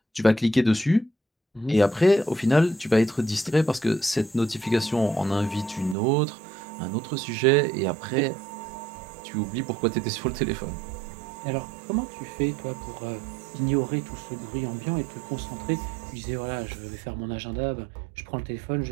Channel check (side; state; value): left; drops out; at 6.0 s